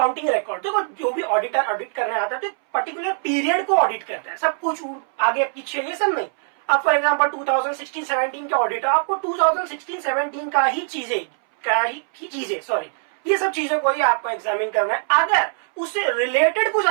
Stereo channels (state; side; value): silent; left; 64 dB below the other